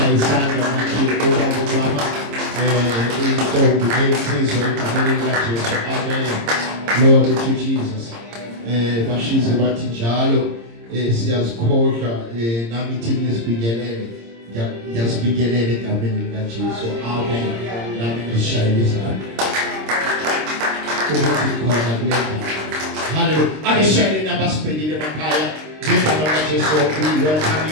izandla makithi ubaba umama intombi neyizizwe egameni likaJesu. Amen. Lord to Jesus. Bashize bathi njalo siyazikhohlwa nami ithi ngizibingelele ngiyazibingelele egameni likaJesu. Amen. Nami ngishayile izandla ukuthi khona kulena. Hallelujah. Akeshayele nabasibhekile emakhaya ngegama likaJesu. We welcome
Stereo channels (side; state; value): left; late; 26 ms